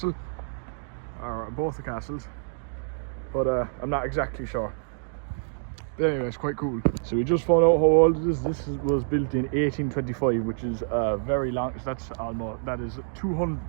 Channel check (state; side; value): silent; left; digital silence